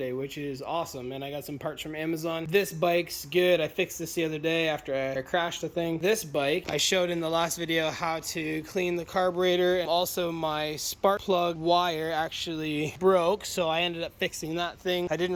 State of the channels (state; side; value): identical; both; correlation 1.00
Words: which is awesome. And I got some parts from Amazon. This bike's good. I fixed this the other day after I crashed the thing. This bike, I showed in the last video how to clean the carburetor. Also my spark plug wire actually broke, so I ended up fixing that thing. I